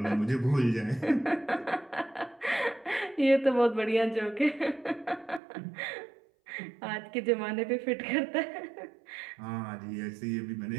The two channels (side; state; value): left; drops out; at 5.4 s